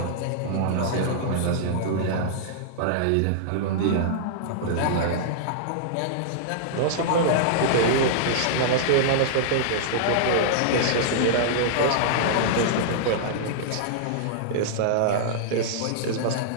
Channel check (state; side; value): different; both; correlation -0.02